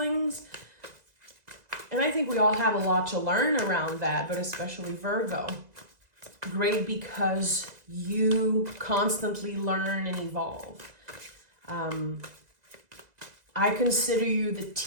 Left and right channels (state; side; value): late; left; 2.0 ms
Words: And I think we all have a lot to learn around that, but especially Virgo. Great, because you constantly learn and evolve. I consider you the